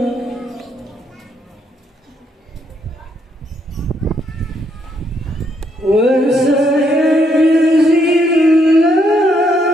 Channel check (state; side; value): normal; both; correlation 0.74